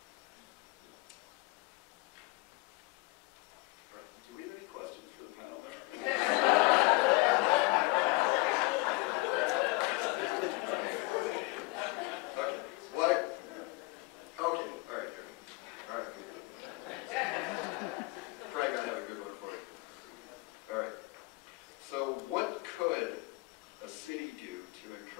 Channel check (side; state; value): right; quieter; 24.9 dB